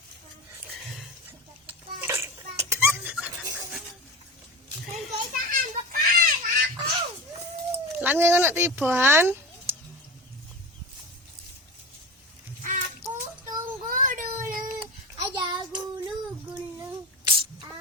Lan ngono tiban. Aku tunggu dulu, aja gulu-gulu.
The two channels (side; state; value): both; normal; correlation 0.27